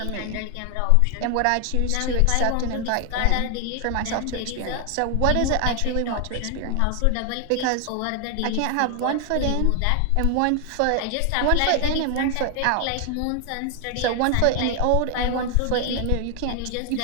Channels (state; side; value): different; both; correlation 0.00